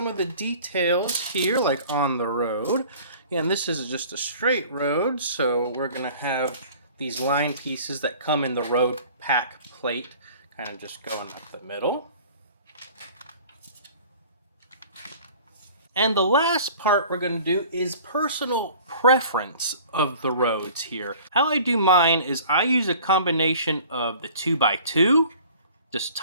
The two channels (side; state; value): both; inverted; correlation -0.47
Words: of the details here, like on the road. And this is just a straight road, so we're going to have these line pieces that come in the road pack plate, kind of just going up the middle. And the last part we're going to do is personal preference of the roads here. How I do mine is I use a combination of the 2x2, just